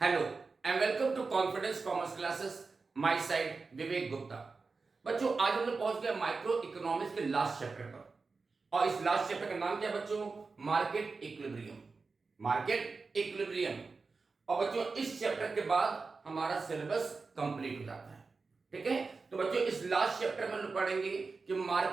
and welcome to confidence commerce classes. My side Vivek Gupta. बच्चों, आज हम लोग पहुंच गए माइक्रो इकोनॉमिक्स के लास्ट चैप्टर पर। और इस लास्ट चैप्टर का नाम क्या है बच्चों? Market equilibrium. Market equilibrium. और बच्चों, इस चैप्टर के बाद हमारा सिलेबस कंप्लीट हो जाता है। ठीक है, तो बच्चों इस लास्ट चैप्टर में हम लोग पढ़ेंगे कि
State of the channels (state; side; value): quieter; left; 4.3 dB